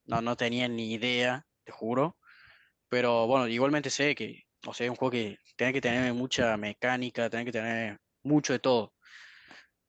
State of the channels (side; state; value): both; identical; correlation 1.00